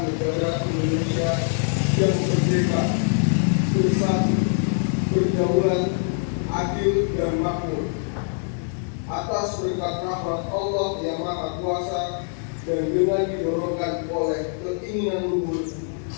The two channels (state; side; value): silent; right; 63 dB below the other